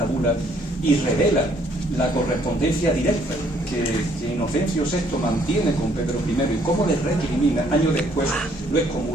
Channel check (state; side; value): normal; both; correlation 0.65